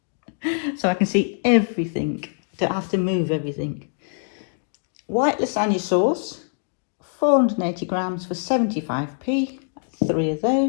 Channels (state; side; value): silent; right; digital silence